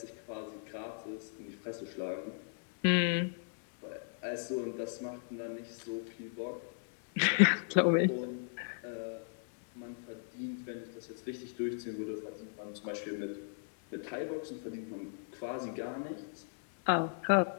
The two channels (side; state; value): right; silent; digital silence